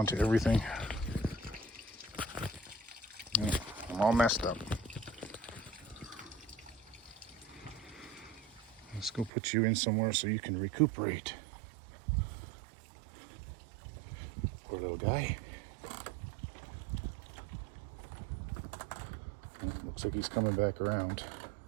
to everything. I'm all messed up. Let's go put you in somewhere so you can recuperate. Poor little guy. Looks like he's coming back around.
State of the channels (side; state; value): left; drops out; at 9.3 s